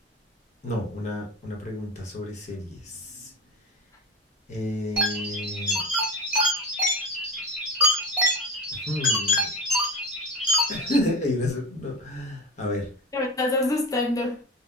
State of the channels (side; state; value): both; normal; correlation 0.29